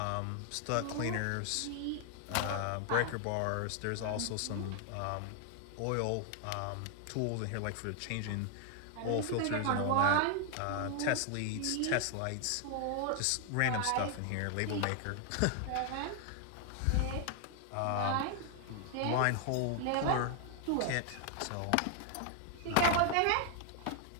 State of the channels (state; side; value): different; both; correlation 0.00